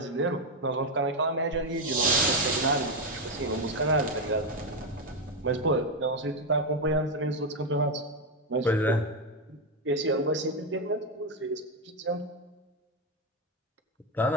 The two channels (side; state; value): both; normal; correlation 0.07